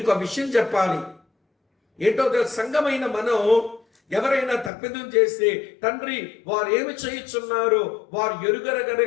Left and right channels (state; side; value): drops out; right; at 4.7 s